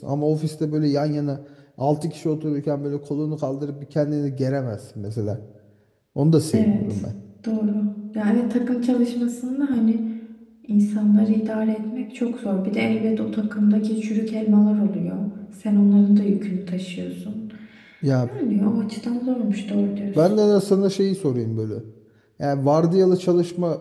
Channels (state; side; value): identical; both; correlation 1.00